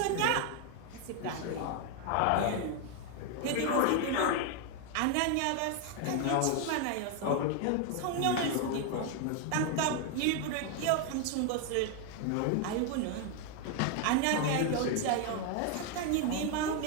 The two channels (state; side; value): different; both; correlation 0.01